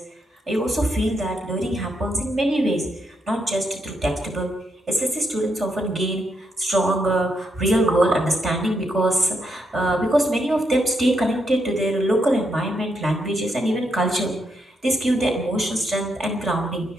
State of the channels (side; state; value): both; normal; correlation 0.80